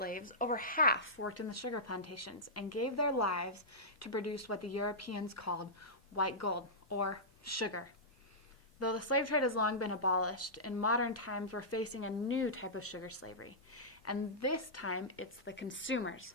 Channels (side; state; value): both; normal; correlation -0.15